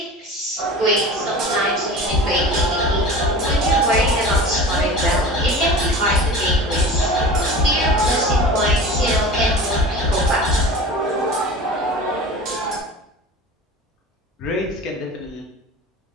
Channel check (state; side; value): normal; both; correlation 0.36